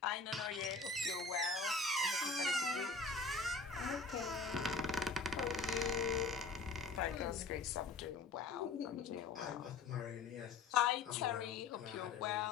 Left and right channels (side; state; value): right; quieter; 4.2 dB